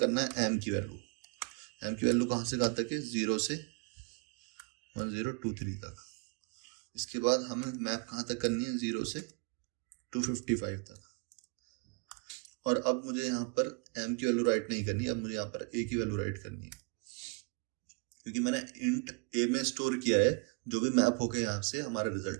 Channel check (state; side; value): quieter; left; 33.3 dB